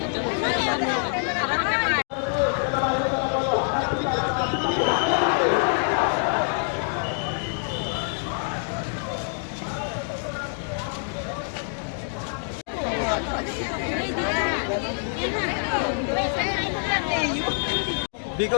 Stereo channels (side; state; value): right; silent; 55 dB below the other